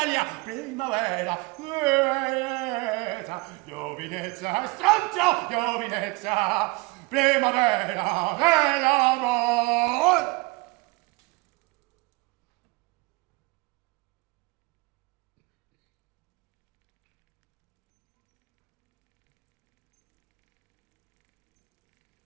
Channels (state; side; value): quieter; left; 25.5 dB